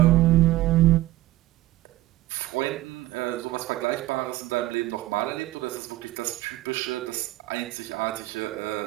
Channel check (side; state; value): left; quieter; 16.6 dB